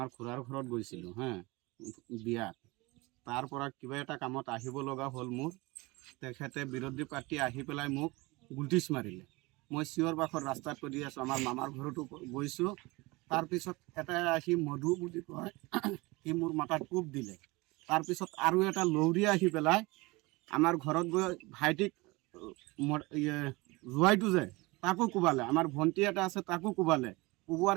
খুৰাৰ ঘৰত গৈছিলোঁ বিয়াত। তাৰ পৰা কিবা এটা কামত আহিব লগা হ'ল মোৰ। তেখেতে বিৰোধী পাৰ্টি আহি পেলাই মোক গুলটিছ মাৰিলে। মই চিঞৰ বাখৰ ৰাস্তাত কৰি আছোঁ, আমাৰ মামাৰ ঘৰতো গৈছোঁ। তাৰপিছত এটা আহি মধু বুলি কয়, সি মোৰ মাথাত কোব দিলে। তাৰপিছত আৰু এটা লৌৰিয়া আহি পেলাই আমাৰ ঘৰত গৈ ভাইটিক জোৱাইটো যে তাকো কোবালে, আমাৰ ভণ্টি এটা আছে তাকো কোবালে। কোবোৱাৰ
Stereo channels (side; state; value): left; quieter; 23.6 dB